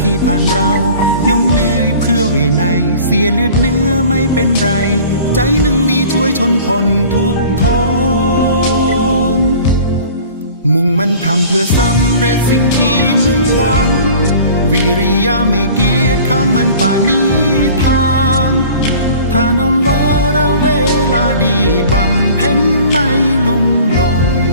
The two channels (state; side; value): inverted; both; correlation -0.45